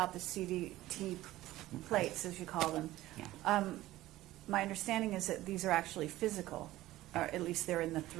the CDT plates, as you call them. Yeah. My understanding is that these are actually physical, or at least they're in the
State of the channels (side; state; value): left; quieter; 16.1 dB